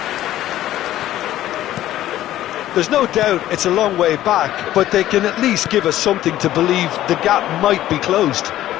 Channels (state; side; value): quieter; right; 13.6 dB